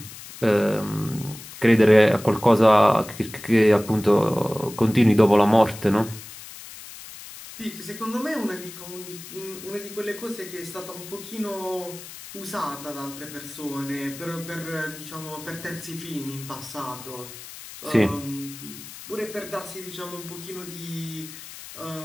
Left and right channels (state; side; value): noise; left; hiss, 14 dB below the sound